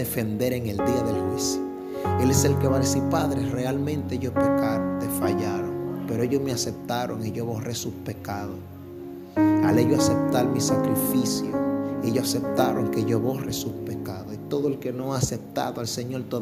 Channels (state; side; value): identical; both; correlation 1.00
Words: en el día del juicio. Él es el que va a decir: Padre, realmente ellos pecaron, te fallaron, pero ellos me aceptaron y yo borré sus pecados. Al ellos aceptar mi sacrificio, ellos aceptaron que yo borre sus pecados. Y todo el que no ha aceptado al Señor